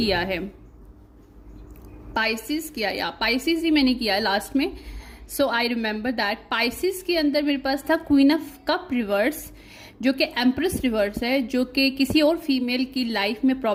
है, पाइसिस ही मैंने किया है लास्ट में। सो आई रिमेंबर दैट पाइसिस के अंदर मेरे पास था क्वीन ऑफ कप रिवर्स, जो कि एम्प्रेस रिवर्स है, जो कि किसी और फीमेल की लाइफ में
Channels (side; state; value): both; identical; correlation 1.00